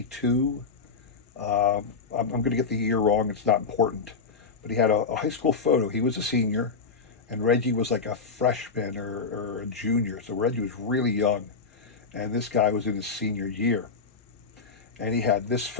I'm going to get the year wrong. It's not important. But he had a high school photo. He was a senior, and Reggie was like a freshman or a junior. So Reggie was really young, and this guy was in his senior year. And he had this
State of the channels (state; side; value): quieter; right; 4.8 dB